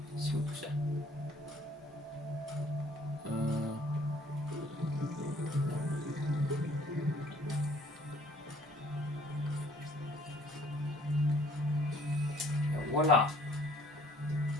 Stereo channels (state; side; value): normal; both; correlation 0.58